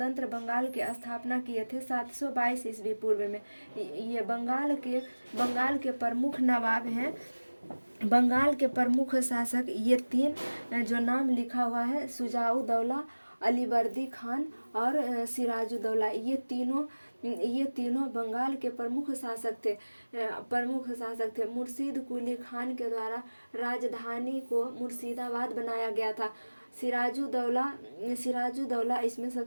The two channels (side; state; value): both; inverted; correlation -1.00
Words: बंगाल की स्थापना किए थे 722 ईस्वी पूर्व में। ये बंगाल के प्रमुख नवाब हैं। बंगाल के प्रमुख शासक ये तीन जो नाम लिखा हुआ है, शुजाउद्दौला, अलीवर्दी खान और सिराजुद्दौला, ये तीनों बंगाल के प्रमुख शासक थे। मुर्शीद कुली खान के द्वारा राजधानी को मुर्शिदाबाद बनाया गया था। सिराजुद्दौला इसमें